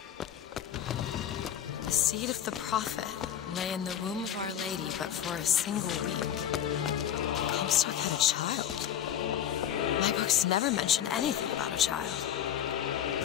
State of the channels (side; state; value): right; quieter; 9.8 dB